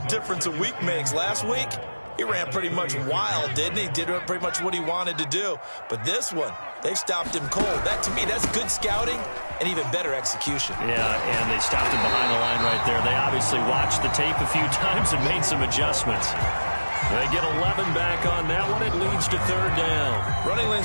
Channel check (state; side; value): inverted; both; correlation -1.00